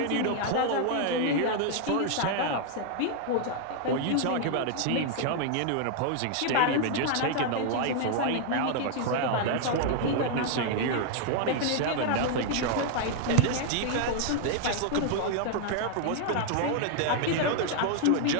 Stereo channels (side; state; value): both; different; correlation 0.00